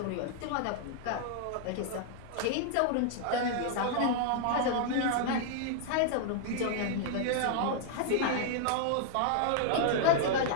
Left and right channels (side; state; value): both; different; correlation 0.00